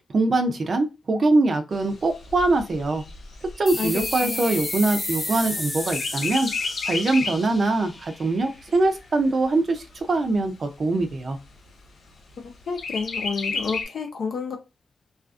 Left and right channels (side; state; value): both; normal; correlation 0.87